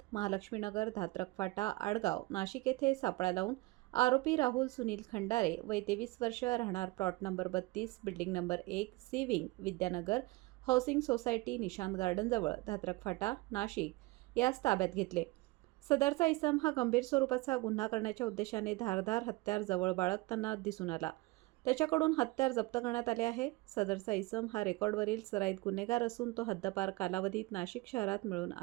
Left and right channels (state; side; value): quieter; left; 21.8 dB